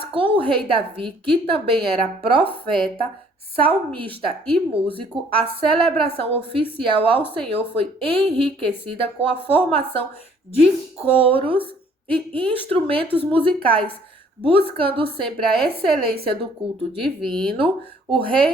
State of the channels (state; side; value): normal; both; correlation 0.60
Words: com o rei Davi, que também era profeta, salmista e músico, a celebração oficial ao Senhor foi enriquecida com a formação de coros e instrumentos musicais. Buscando sempre a excelência do culto divino, o